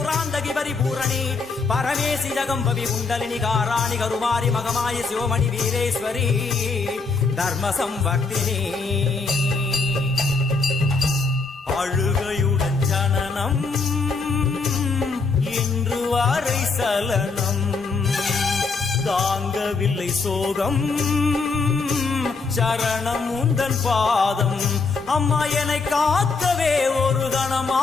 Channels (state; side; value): quieter; right; 4.3 dB